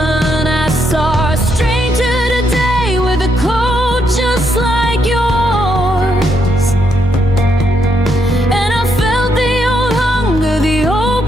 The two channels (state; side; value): normal; both; correlation 0.77